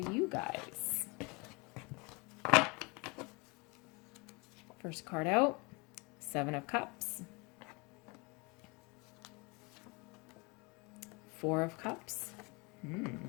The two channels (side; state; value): right; quieter; 28.3 dB